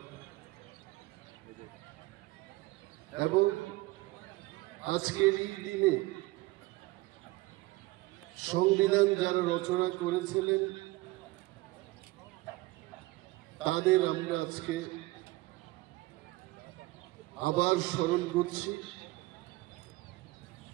এবং আজকের এই দিনে সংবিধান যারা রচনা করেছিলেন তাদের আমরা আজকে আবার স্মরণ করছি।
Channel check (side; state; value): left; quieter; 20.4 dB